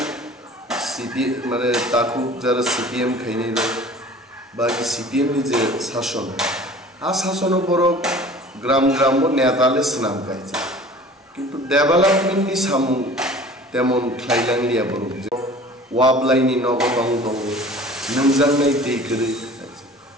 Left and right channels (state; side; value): normal; both; correlation 0.45